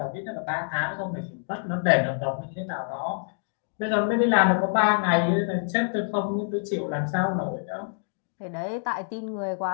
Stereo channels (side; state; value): right; silent; digital silence